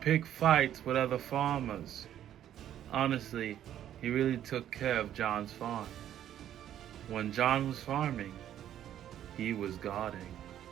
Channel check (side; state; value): left; quieter; 11.0 dB